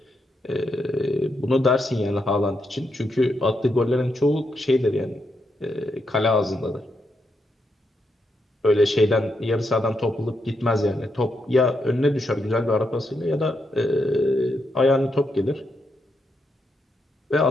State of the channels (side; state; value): both; normal; correlation 0.81